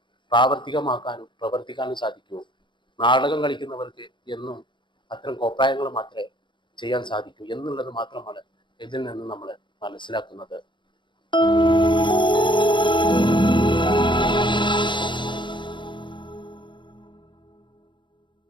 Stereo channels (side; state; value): right; late; 0.23 ms